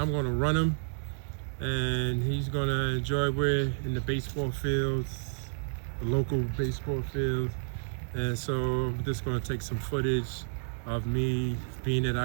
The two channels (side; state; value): left; silent; 58 dB below the other